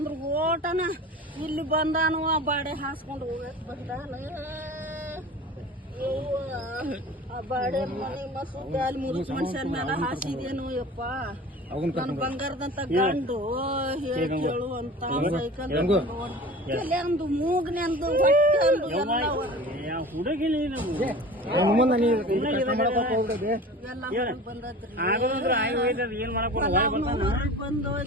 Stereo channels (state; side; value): normal; both; correlation 0.38